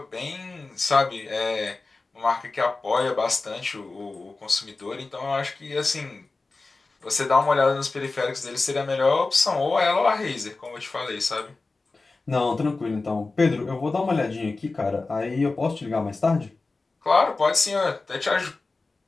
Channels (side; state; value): right; quieter; 3.6 dB